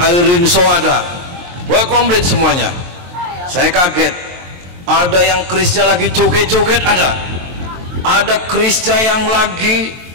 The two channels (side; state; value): left; late; 23 ms